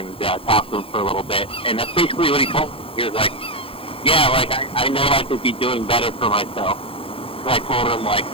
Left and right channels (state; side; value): late; right; 0.27 ms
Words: talked to him for a little bit, and that's basically what he told me. He was like, yeah, like I know I could be doing better for myself. So I told him like,